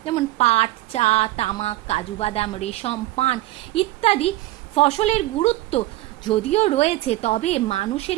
যেমন পাট, চা, তামাক, কাজু বাদাম, রেশম, পান ইত্যাদি ফসলের গুরুত্ব যদিও রয়েছে, তবে মানুষের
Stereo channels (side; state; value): left; quieter; 17.6 dB